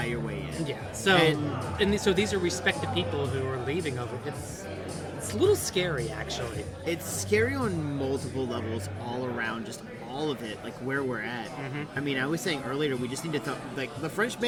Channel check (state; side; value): identical; both; correlation 1.00